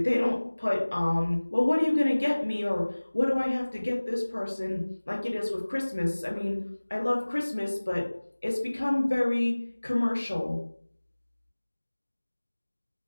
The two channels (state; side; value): inverted; both; correlation -1.00